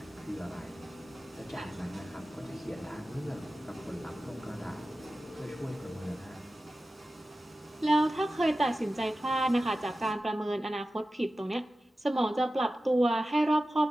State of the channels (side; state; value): both; normal; correlation 0.94